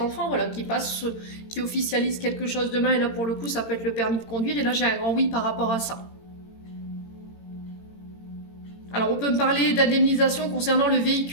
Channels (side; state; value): right; late; 18 ms